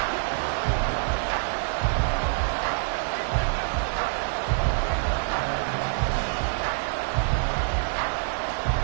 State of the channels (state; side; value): silent; left; digital silence